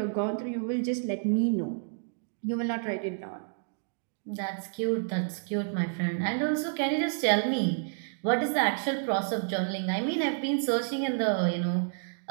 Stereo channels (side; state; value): left; silent; digital silence